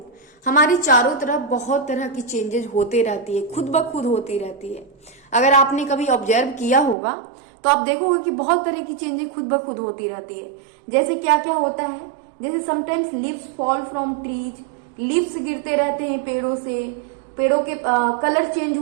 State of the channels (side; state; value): left; drops out; at 7.0 s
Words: हमारे चारों तरफ बहुत तरह की चेंजेस होते रहती है, खुद ब खुद होती रहती है। अगर आपने कभी ऑब्जर्व किया होगा तो आप देखोगे कि बहुत तरह की चेंजेस खुद ब खुद होती रहती है। जैसे क्या क्या होता है, जैसे sometimes leaves fall from trees, leaves गिरते रहते हैं पेड़ों से, पेड़ों के कलर चेंज